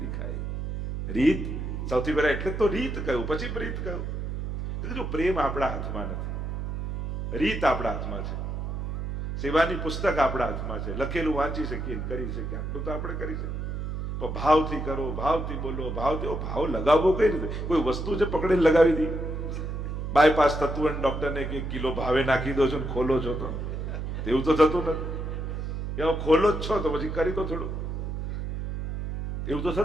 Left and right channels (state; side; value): noise; right; hum, 4 dB below the sound